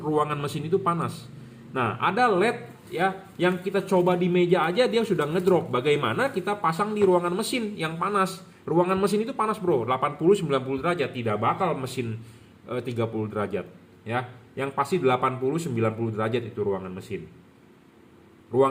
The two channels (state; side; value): identical; both; correlation 1.00